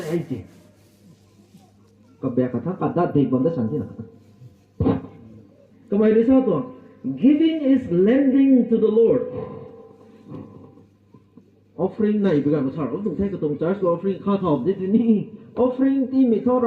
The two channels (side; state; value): both; identical; correlation 1.00